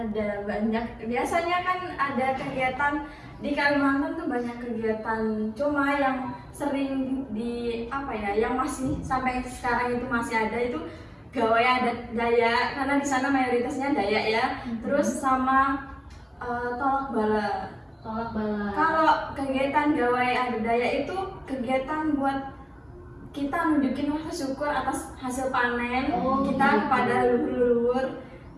banyak. Biasanya kan ada kegiatan di Kalimantan tuh banyak kegiatan. Cuma yang sering di apa ya, yang masih sampai sekarang itu masih ada itu gawai adat Dayak karena di sana mayoritasnya Dayak ya. Terus sama tolak bala. Tolak bala. Kalau kegiatan gawai adat Dayak itu kegiatan buat kita nunjukin rasa syukur atas hasil panen Oh, kita gitu. kepada leluhur.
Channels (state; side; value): identical; both; correlation 1.00